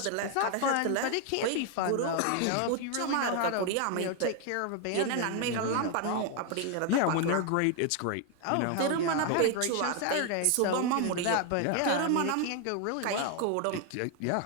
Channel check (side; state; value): both; different; correlation 0.00